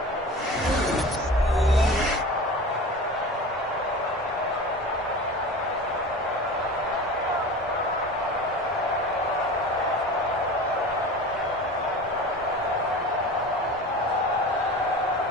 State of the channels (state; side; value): normal; both; correlation 0.34